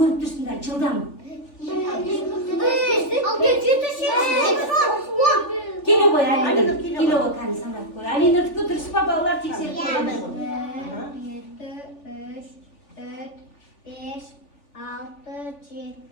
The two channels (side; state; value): right; late; 3.4 ms